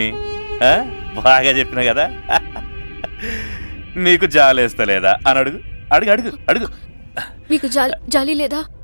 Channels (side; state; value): both; inverted; correlation -1.00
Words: బాగా చెప్పిన కదా. నీకు జాలేస్తలేదా అని అడుగు. అడుగు అడుగు అడుగు. మీకు జాలి లేదా?